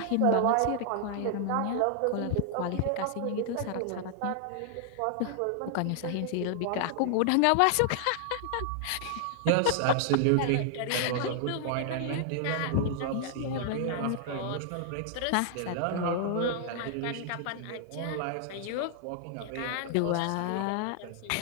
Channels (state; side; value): different; both; correlation 0.00